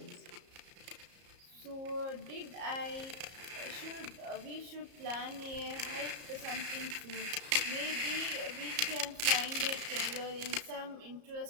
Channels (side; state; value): left; late; 34 ms